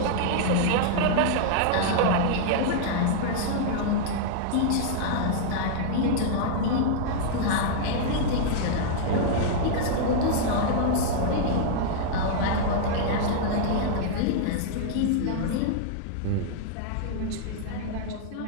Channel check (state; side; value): different; both; correlation -0.01